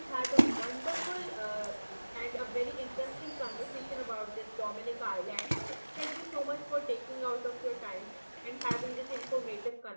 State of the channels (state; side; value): inverted; both; correlation -1.00